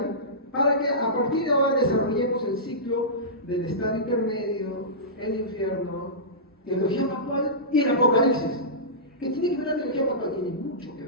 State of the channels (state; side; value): normal; both; correlation -0.19